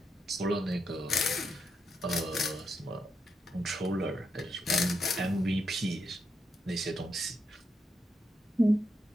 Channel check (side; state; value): both; normal; correlation 0.82